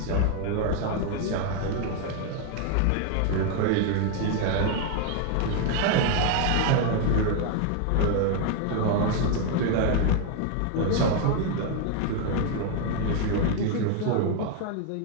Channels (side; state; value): both; different; correlation 0.00